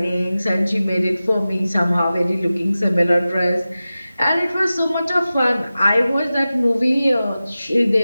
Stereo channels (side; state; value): both; inverted; correlation -0.95